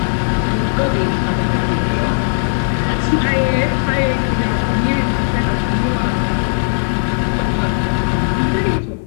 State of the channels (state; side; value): silent; right; 68 dB below the other